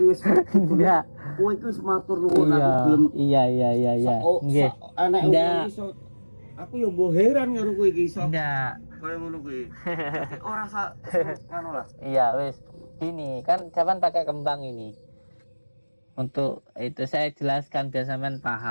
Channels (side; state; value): both; inverted; correlation -1.00